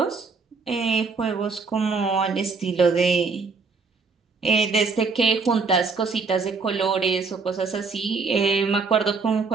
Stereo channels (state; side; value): quieter; left; 4.6 dB